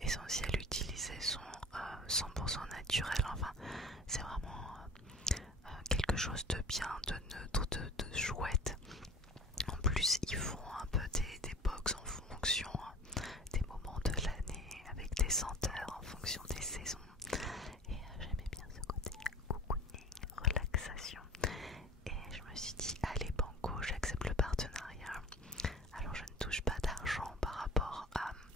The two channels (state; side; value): normal; both; correlation 0.41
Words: essentielles utilisées sont 100% naturelles, enfin c'est vraiment quelque chose de bien, de neutre, de chouette. En plus ils font un peu des box en fonction des moments de l'année, avec des senteurs en fonction des saisons. Et j'aimais bien ce côté cocooning, relaxation. Et je me suis dit, allez banco, j'accepte le partenariat. Alors je ne touche pas d'argent par rapport